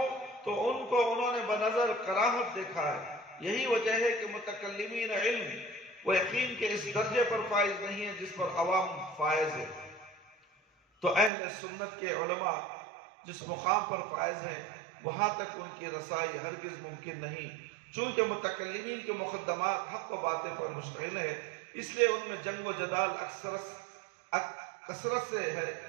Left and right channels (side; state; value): left; drops out; at 11.3 s